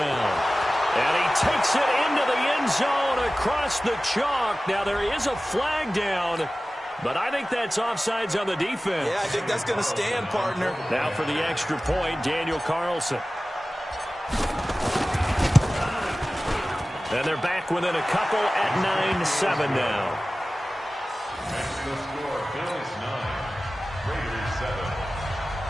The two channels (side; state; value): both; normal; correlation 0.96